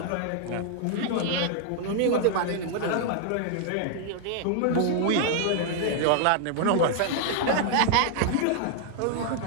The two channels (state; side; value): different; both; correlation 0.00